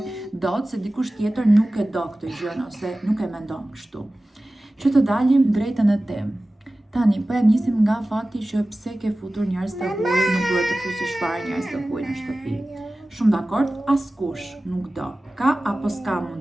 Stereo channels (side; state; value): both; normal; correlation 0.96